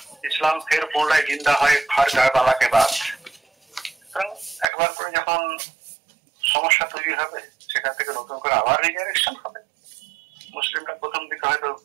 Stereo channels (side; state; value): left; drops out; at 4.7 s